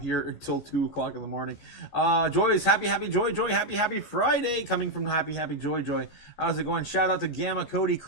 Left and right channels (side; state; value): right; late; 14 ms